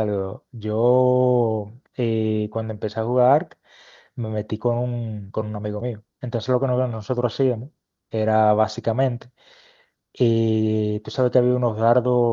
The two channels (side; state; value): both; identical; correlation 1.00